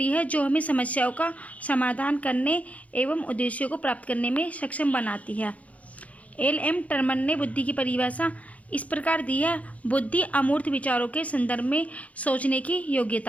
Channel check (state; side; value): late; right; 0.068 ms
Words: है जो हमें समस्याओं का समाधान करने एवं उद्देश्यों को प्राप्त करने में सक्षम बनाती है। एल.एम. टर्मन ने बुद्धि की परिभाषा इस प्रकार दी है: बुद्धि अमूर्त विचारों के संदर्भ में सोचने की